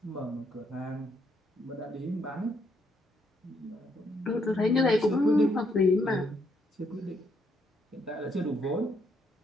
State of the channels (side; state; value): both; normal; correlation 0.73